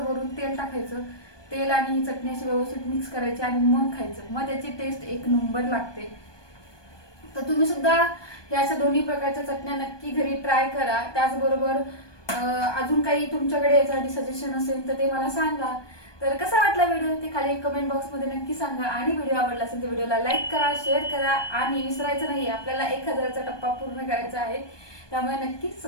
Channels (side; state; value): right; late; 1.2 ms